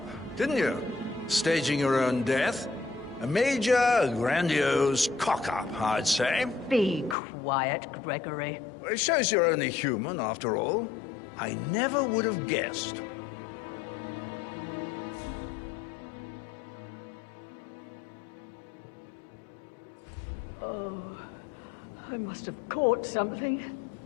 didn't you? Staging your own death? A major, grandiose cock-up, I'd say. Be quiet, Gregory. Well, it shows you're only human, after all. I never would have guessed. Oh, I must have caught something.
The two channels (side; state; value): right; drops out; at 7.2 s